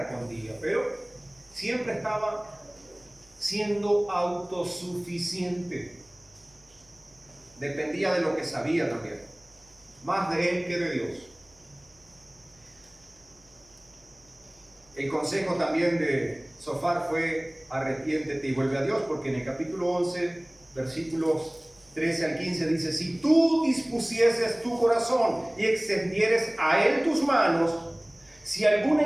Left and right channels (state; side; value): noise; right; hum, 30 dB below the sound